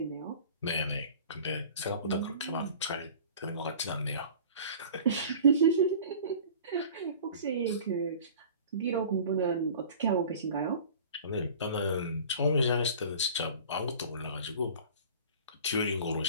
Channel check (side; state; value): both; inverted; correlation -0.43